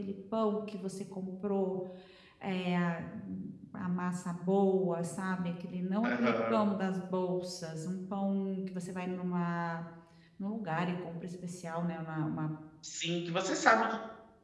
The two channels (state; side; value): identical; both; correlation 1.00